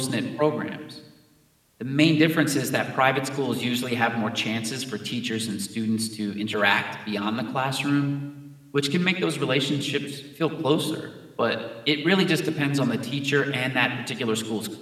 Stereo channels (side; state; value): both; identical; correlation 1.00